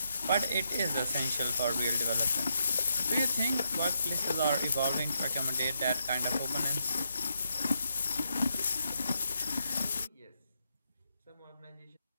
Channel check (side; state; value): both; inverted; correlation -0.81